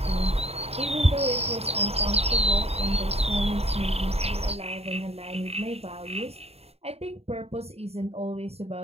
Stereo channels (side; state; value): left; late; 0.30 ms